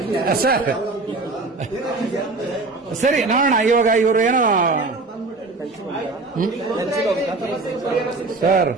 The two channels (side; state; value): left; quieter; 3.5 dB